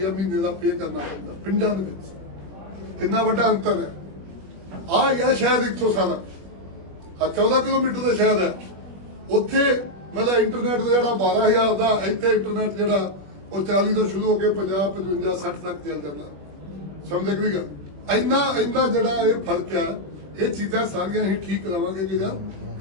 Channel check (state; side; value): late; left; 21 ms